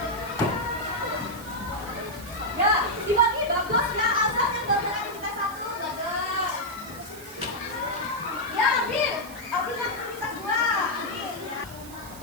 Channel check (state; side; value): noise; right; hiss, 16 dB below the sound